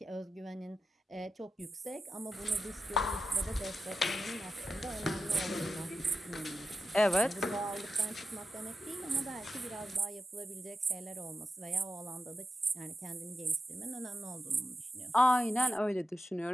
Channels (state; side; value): normal; both; correlation 0.89